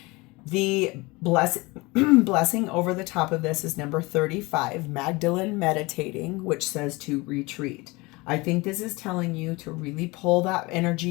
The blessing over the top of this is number 35, Magdalene meditating, which says to retreat. I think this is telling you to really pull that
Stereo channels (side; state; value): right; quieter; 24.0 dB